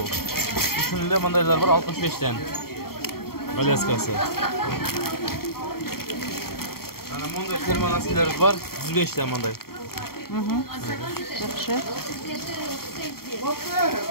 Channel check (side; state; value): right; late; 0.94 ms